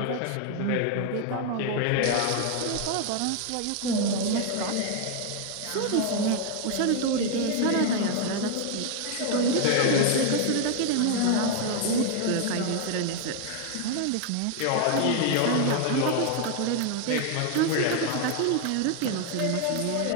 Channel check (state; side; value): different; both; correlation 0.01